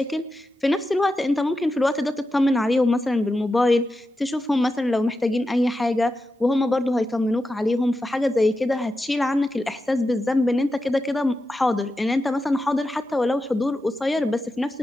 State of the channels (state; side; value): normal; both; correlation 0.90